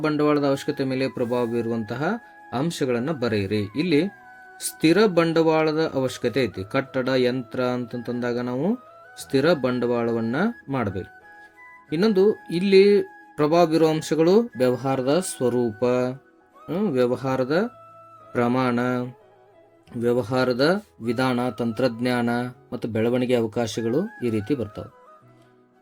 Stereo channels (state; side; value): identical; both; correlation 1.00